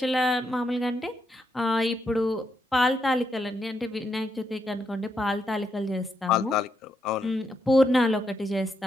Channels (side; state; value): both; normal; correlation 0.80